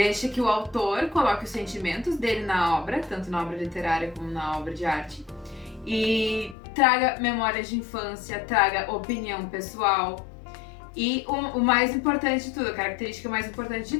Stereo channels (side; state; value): right; drops out; at 6.6 s